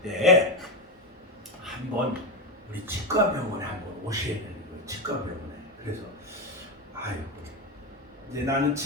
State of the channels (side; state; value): both; normal; correlation 0.12